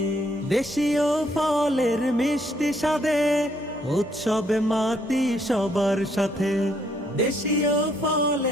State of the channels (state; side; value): normal; both; correlation 0.70